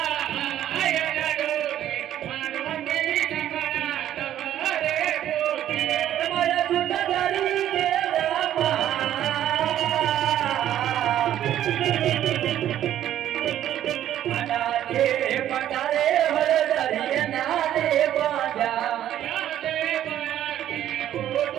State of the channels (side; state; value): left; quieter; 11.7 dB